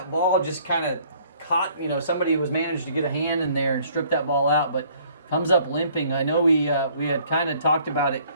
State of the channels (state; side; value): inverted; both; correlation -0.59